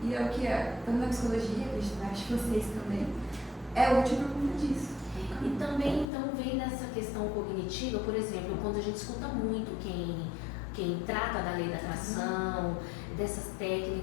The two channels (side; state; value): right; drops out; at 6.1 s